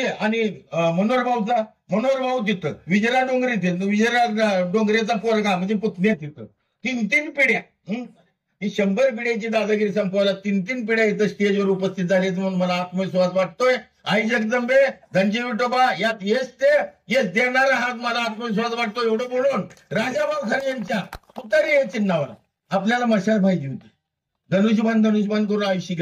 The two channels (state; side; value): identical; both; correlation 1.00